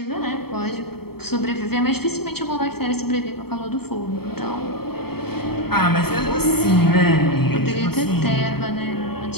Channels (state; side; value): late; right; 0.96 ms